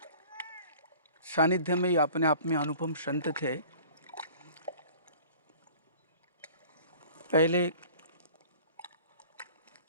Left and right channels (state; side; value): inverted; both; correlation -0.46